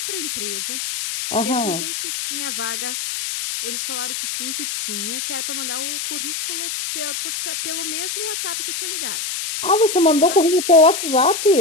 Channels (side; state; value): left; noise; hiss, 4 dB below the sound